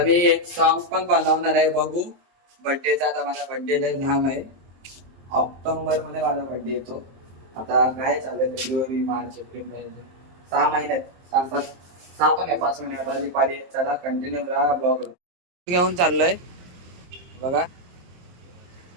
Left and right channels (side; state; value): left; late; 23 ms